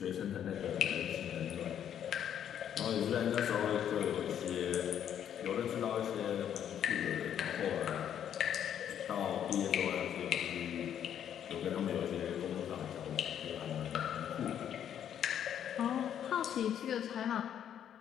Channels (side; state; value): right; quieter; 9.6 dB